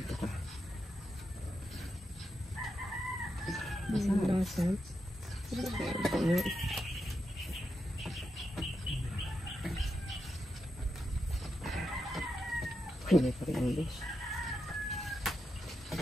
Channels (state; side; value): normal; both; correlation 0.86